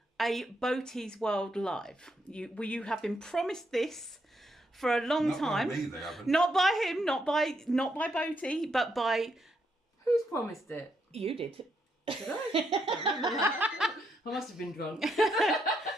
a Boaty's World Live. You have been promised this for a long time. Not by me, they haven't. Not by him, not by Boaty, but by... Who's promised it? You did. Did I? I must have been drunk.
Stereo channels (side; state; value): both; normal; correlation 0.78